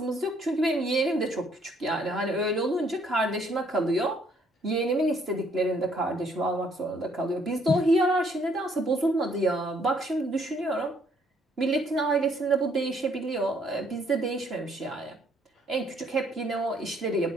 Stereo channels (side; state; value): both; normal; correlation 0.66